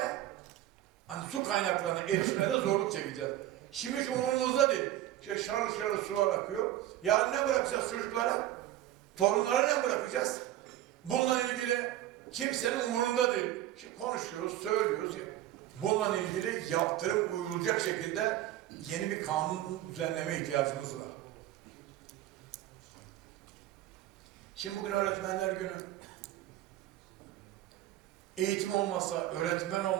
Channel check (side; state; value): left; quieter; 13.5 dB